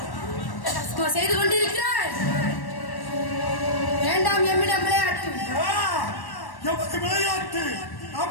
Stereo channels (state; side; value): late; right; 1.1 ms